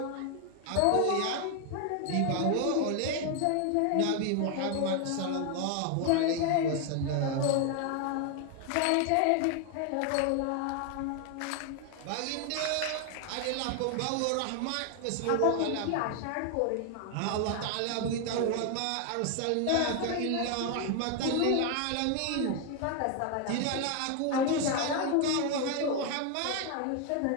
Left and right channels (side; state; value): both; different; correlation 0.01